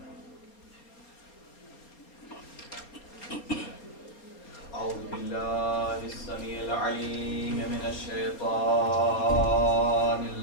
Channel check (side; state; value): right; late; 4.3 ms